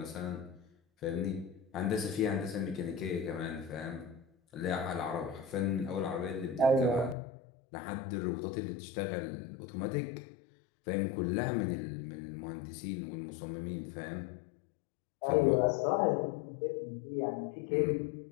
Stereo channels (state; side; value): drops out; right; at 7.2 s